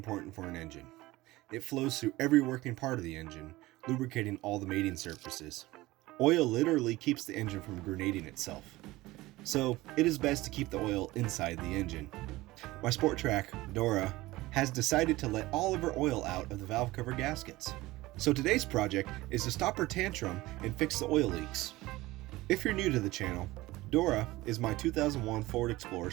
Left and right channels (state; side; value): quieter; left; 18.9 dB